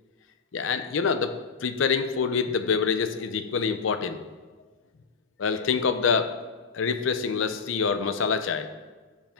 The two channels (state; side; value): quieter; right; 5.4 dB